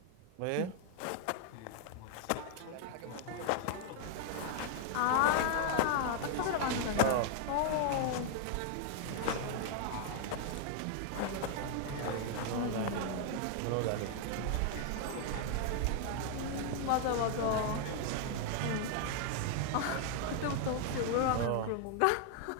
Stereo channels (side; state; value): both; different; correlation 0.00